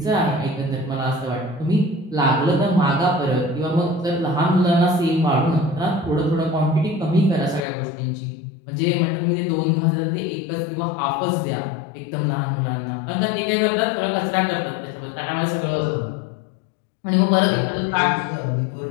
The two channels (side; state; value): right; drops out; at 7.6 s